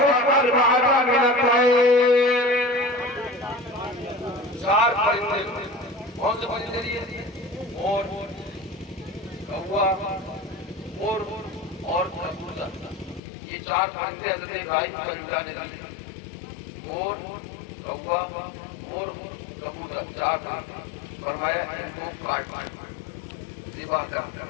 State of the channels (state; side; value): drops out; right; at 13.2 s